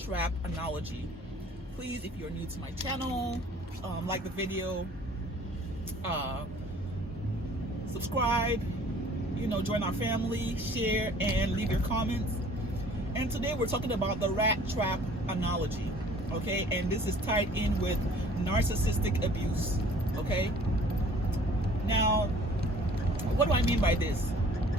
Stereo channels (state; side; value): normal; both; correlation 0.52